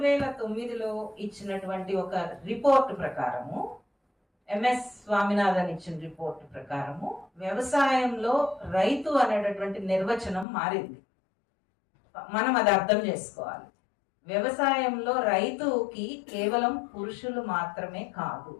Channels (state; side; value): drops out; right; at 10.5 s